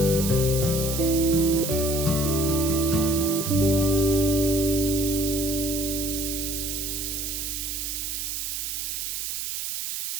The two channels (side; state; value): right; noise; hiss, 3 dB below the sound